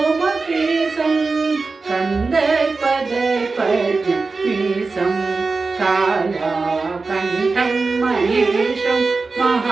कन्दर्पदर्पण्यमीशं कालाकण्ठं महेशं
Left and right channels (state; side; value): quieter; left; 4.0 dB